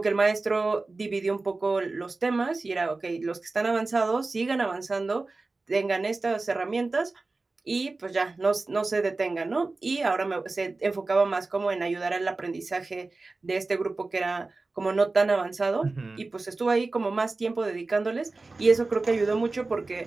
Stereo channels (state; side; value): quieter; left; 3.5 dB